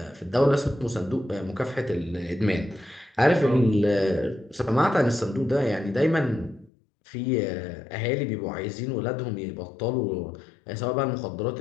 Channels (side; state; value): right; drops out; at 6.7 s